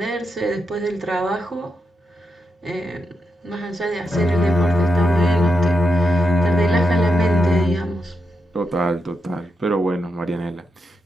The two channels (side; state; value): both; normal; correlation 0.85